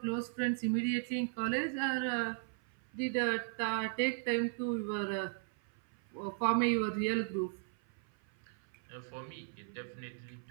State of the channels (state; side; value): silent; left; 53 dB below the other